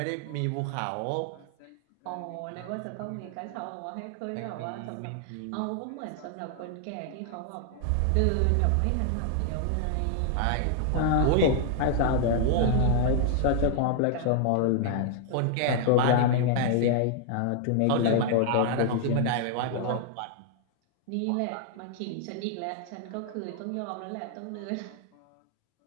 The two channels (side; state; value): both; different; correlation 0.00